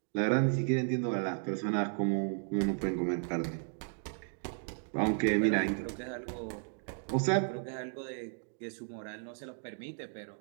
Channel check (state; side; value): silent; left; 55 dB below the other